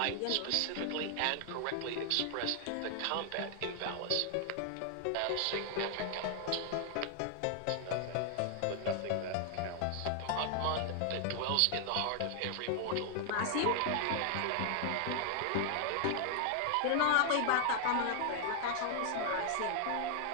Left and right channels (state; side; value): different; both; correlation 0.00